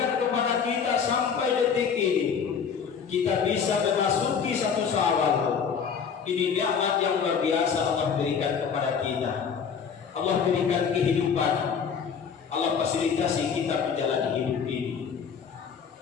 kepada kita sampai detik ini kita bisa memasuki satu Syawal. Ini nikmat yang luar biasa Allah berikan kepada kita. Allah berikan kehidupan. Allah fasilitasi kita menjalani hidup ini.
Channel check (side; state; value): right; quieter; 6.7 dB